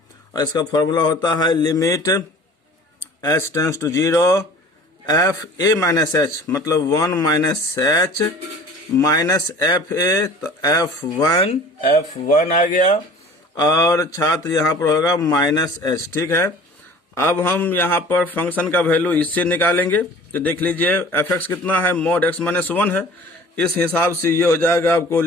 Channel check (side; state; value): both; normal; correlation 0.45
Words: और इसका फॉर्मूला होता है limit h tends to 0 f a minus h, मतलब 1 minus h minus f a, तो F1 आ गया। और छात्र यहाँ पर होगा माइनस एच, ठीक है। अब हम यहाँ पर फंक्शन का वैल्यू इससे निकालेंगे। तो देख लीजिए एफ एक्स कितना है, मॉड एक्स माइनस वन है, इस हिसाब से ये हो जाएगा आपको